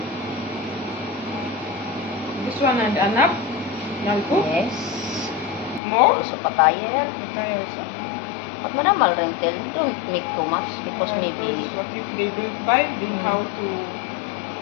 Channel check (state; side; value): drops out; right; at 5.8 s